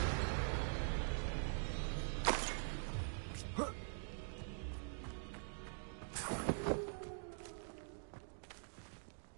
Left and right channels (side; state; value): left; silent; digital silence